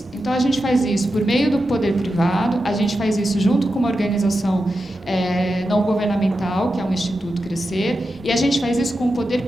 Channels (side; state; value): both; normal; correlation 0.89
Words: Então a gente faz isso por meio do poder privado, a gente faz isso junto com uma organização não governamental, que é um Instituto Crescer, e a gente faz isso com o